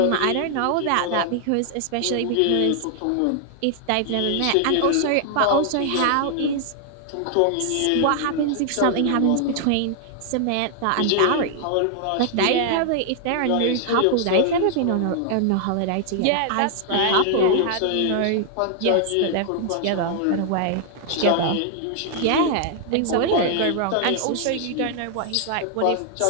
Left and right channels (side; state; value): both; different; correlation 0.00